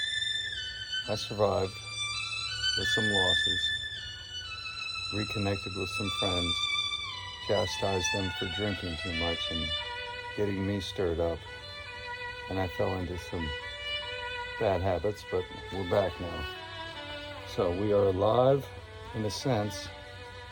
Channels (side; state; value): both; identical; correlation 1.00